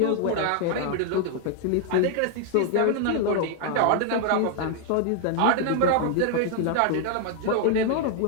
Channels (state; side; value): different; both; correlation 0.00